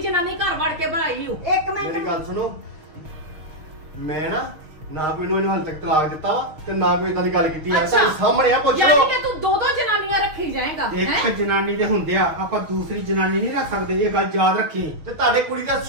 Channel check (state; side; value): late; left; 6.4 ms